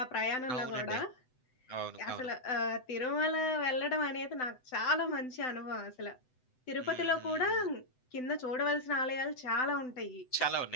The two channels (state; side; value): late; right; 7.9 ms